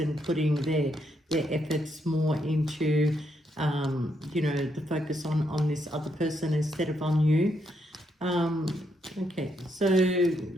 putting their efforts more into the focus on this other person instead of on you. Okay, so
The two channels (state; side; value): normal; both; correlation 0.77